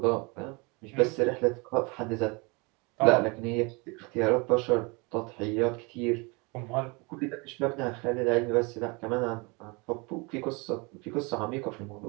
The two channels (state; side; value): quieter; left; 28.7 dB